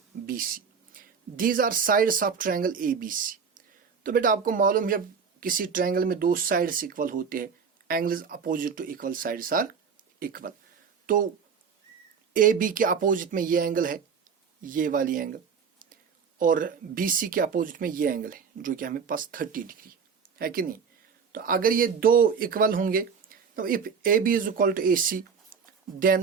BC, these are sides of triangle ABC. तो बेटा आपको मालूम है जब किसी ट्रायंगल में दो साइड्स इक्वल होते हैं, angles opposite to equal sides are equal. तो AB के अपोजिट में ये एंगल है, ये वाली एंगल, और BC के अपोजिट में ये एंगल है जो कि हमें पास 30 डिग्री है कि नहीं. तो अगर ये दो इक्वल होंगे तो if AB is equal to AC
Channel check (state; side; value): quieter; left; 6.2 dB